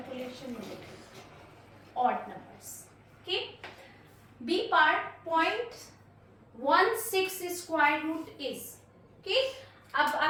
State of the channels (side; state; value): both; identical; correlation 1.00